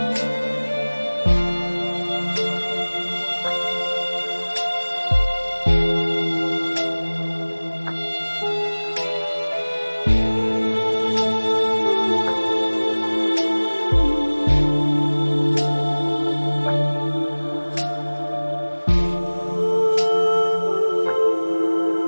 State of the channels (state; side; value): inverted; both; correlation -1.00